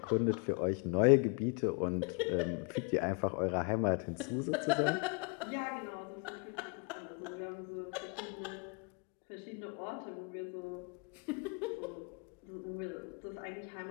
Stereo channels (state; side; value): quieter; right; 33.7 dB